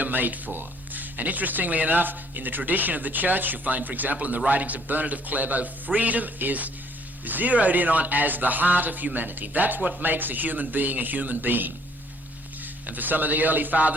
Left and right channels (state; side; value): normal; both; correlation 0.62